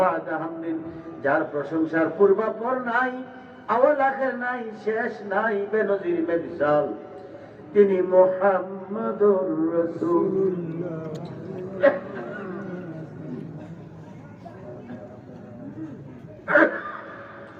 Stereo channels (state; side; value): identical; both; correlation 1.00